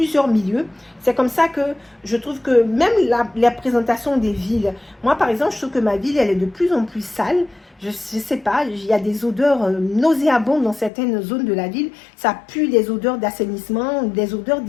milieux. C'est comme ça que je trouve que même la présentation des villes, moi par exemple, je trouve que ma ville, elle est de plus en plus sale. Je ne sais pas, il y a des odeurs nauséabondes dans certaines zones de la ville. Ça pue des odeurs d'assainissement, des odeurs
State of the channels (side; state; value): right; drops out; at 10.9 s